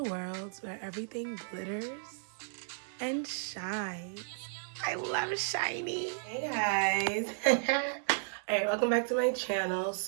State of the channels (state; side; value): silent; left; digital silence